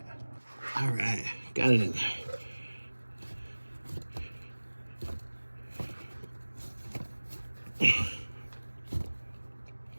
All right, got it in there.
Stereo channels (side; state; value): both; inverted; correlation -1.00